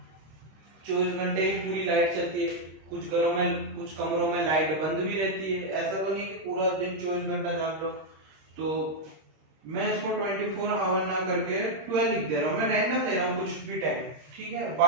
24 घंटे ही पूरी लाइट चलती है, कुछ घरों में कुछ कमरों में लाइट बंद भी रहती है, ऐसा तो नहीं कि पूरा दिन 24 घंटा जान लो। तो मैं इसको 24 आवर ना करके 12 लिख दे रहा हूँ, मैं रैंडम ले रहा हूँ कुछ भी टाइम, ठीक है,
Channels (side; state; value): left; late; 26 ms